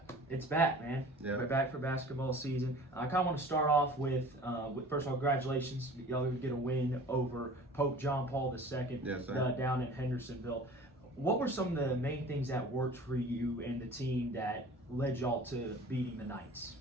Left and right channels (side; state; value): both; normal; correlation 0.44